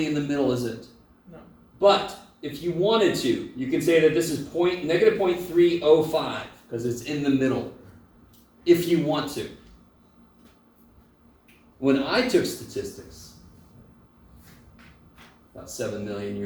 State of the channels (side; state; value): both; identical; correlation 1.00